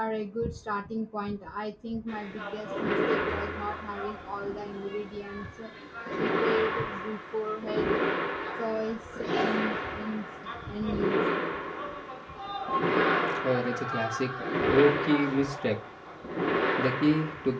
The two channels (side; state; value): both; identical; correlation 1.00